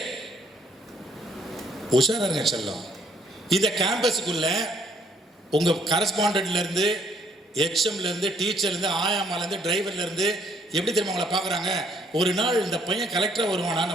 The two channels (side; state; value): both; normal; correlation 0.66